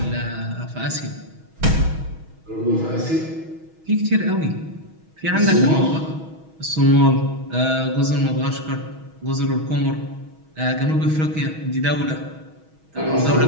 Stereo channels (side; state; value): left; late; 6.3 ms